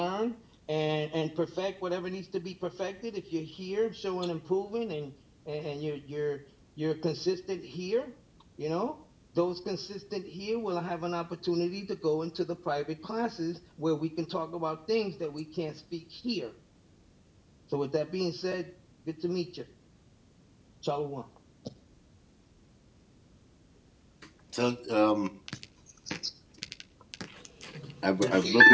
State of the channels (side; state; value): both; identical; correlation 1.00